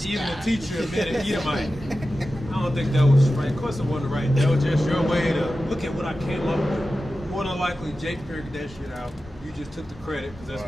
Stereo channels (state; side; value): normal; both; correlation 0.93